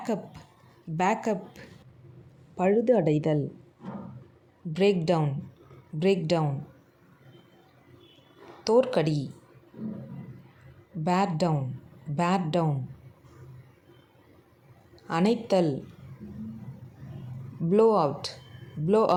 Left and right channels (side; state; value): both; identical; correlation 1.00